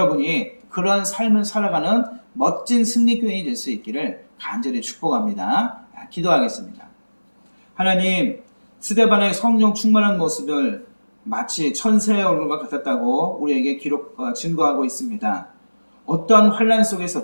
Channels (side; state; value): both; inverted; correlation -1.00